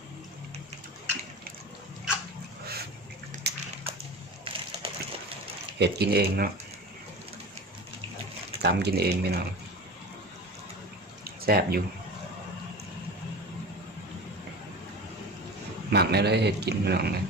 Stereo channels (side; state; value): both; normal; correlation 0.32